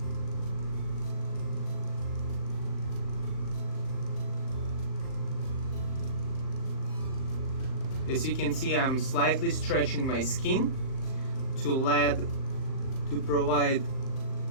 As you can see, I'm slightly stretching my skin to provide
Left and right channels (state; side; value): late; right; 38 ms